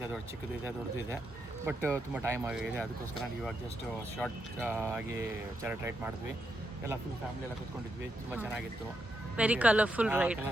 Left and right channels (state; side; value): normal; both; correlation 0.82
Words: ದೊಡ್ಡ ಚಿಕ್ಕದು ಇದೆ, ದೊಡ್ಡದು ಇದೆ. ಬಟ್ ತುಂಬ ಟೈಮ್ ಆಗಿದೆ, ಅದಕ್ಕೋಸ್ಕರ ಇವಾಗ ಜಸ್ಟ್ ಶಾರ್ಟ್ ಆಗಿ ಚಾರಿಟ್ ರೈಡ್ ಮಾಡಿದ್ವಿ. ಎಲ್ಲ ಫುಲ್ ಫ್ಯಾಮಿಲಿ ಎಲ್ಲ ಕೂತ್ಕೊಂಡಿದ್ವಿ, ತುಂಬ ಚೆನ್ನಾಗಿತ್ತು. Very colourful ride.